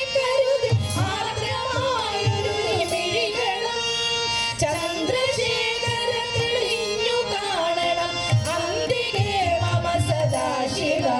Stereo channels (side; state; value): both; identical; correlation 1.00